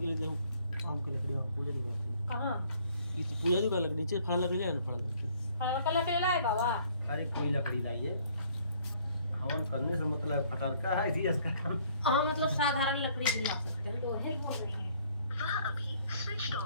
लिए जाऊँ आम की लकड़ी वहाँ पूजा की बात है। कहाँ ये तो पूजा की बात लकड़ी नीचे फल लकड़ी ले आना फल लकड़ी। फल का लकड़ी लाए बाबा। अरे कोई लकड़ी लाइए। हवन करने से मतलब फटरका है इसी इसका काम। हाँ मतलब साधारण लकड़ी भी ला सकते हैं। तो है बोल रही हैं वह अभी स्विच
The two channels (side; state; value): both; inverted; correlation -0.61